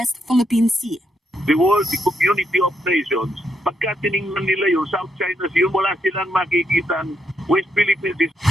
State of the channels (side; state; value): both; normal; correlation 0.78